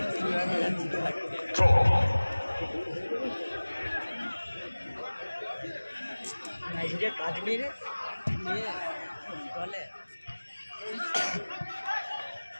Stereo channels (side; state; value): both; inverted; correlation -1.00